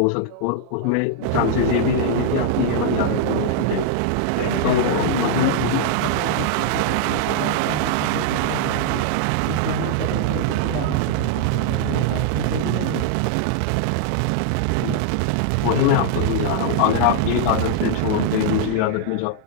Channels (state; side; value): different; both; correlation -0.01